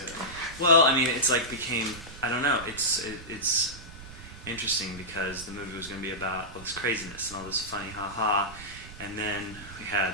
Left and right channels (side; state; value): right; noise; rumble, 16 dB below the sound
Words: well, I mean, it's like became, I don't know, it's interesting because the movie was going to be about all this craziness and all this funny ha ha, and then we